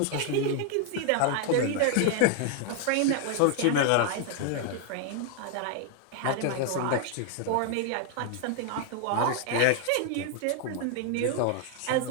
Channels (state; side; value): different; both; correlation 0.00